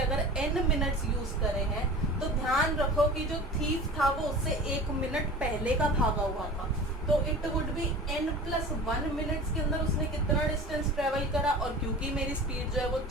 n मिनट्स यूज करे हैं तो ध्यान रखो कि जो थीफ था वो उससे 1 मिनट पहले का भागा हुआ था, तो it would B n+1 minutes के अंदर उसने कितना डिस्टेंस ट्रेवल करा। और क्योंकि मेरी स्पीड जो है वो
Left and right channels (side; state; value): both; normal; correlation 0.38